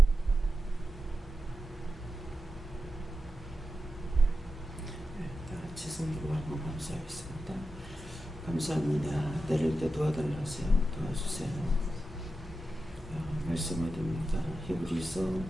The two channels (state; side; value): normal; both; correlation 0.91